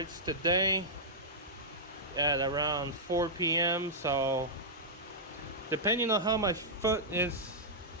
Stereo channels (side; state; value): both; normal; correlation -0.10